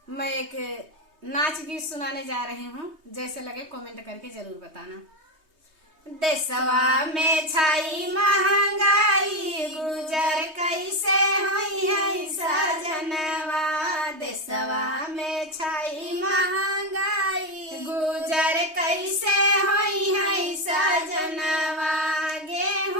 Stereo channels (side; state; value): left; late; 3.2 ms